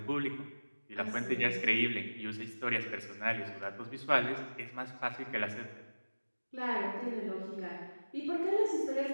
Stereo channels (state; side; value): inverted; both; correlation -1.00